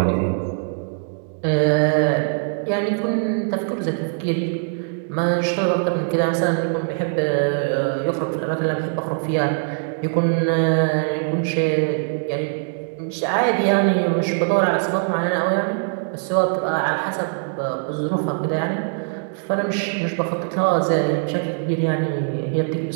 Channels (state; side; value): silent; left; digital silence